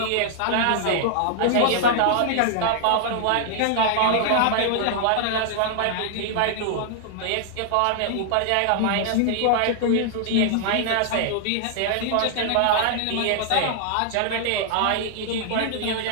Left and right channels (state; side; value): different; both; correlation 0.00